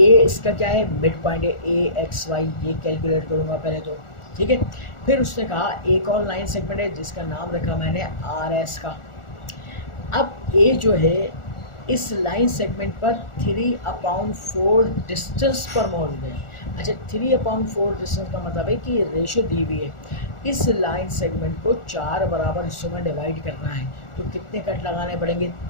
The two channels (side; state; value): right; late; 1.4 ms